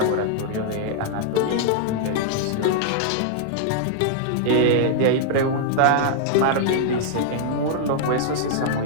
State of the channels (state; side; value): different; both; correlation -0.01